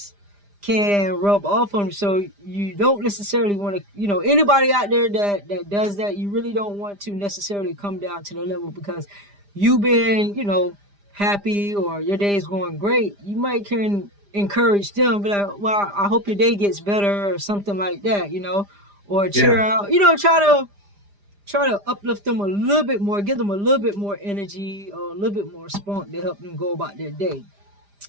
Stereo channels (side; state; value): left; late; 5.0 ms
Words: can rub off on you. So you don't necessarily want to, anybody out there that does that, you really don't want to necessarily come down to the level because you've been, happy or your day is going great. You might can encourage them, be like, well, I hope your day gets better or something like that, or cheer Yeah. out, try to uplift them a little bit more, give them a little bit more energy or a little bit more spunk to help them go about their day